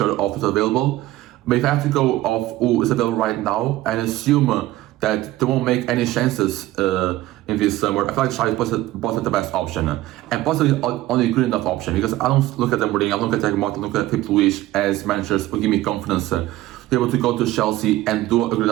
of what's available. But if I have to go off who is available right now and assume that they won't make any chances in this summer, I feel like Xavi is the best option, and possibly only good enough option, because I don't look at them Mourinho, I don't look at Thiago Motta, I look at Filipe Luis as managers who give me confidence to be able to go to Chelsea and do a good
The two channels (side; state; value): left; quieter; 16.2 dB